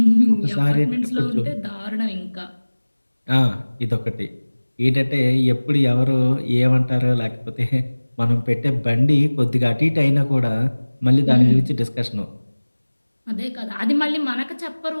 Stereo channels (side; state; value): both; inverted; correlation -1.00